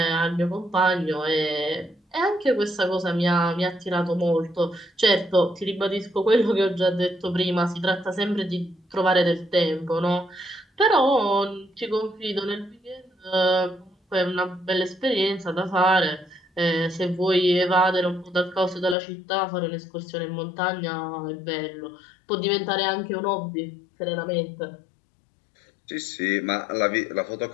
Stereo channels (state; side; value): drops out; right; at 18.9 s